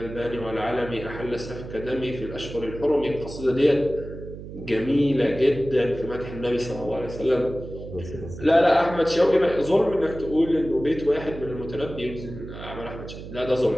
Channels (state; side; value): noise; right; hum, 12 dB below the sound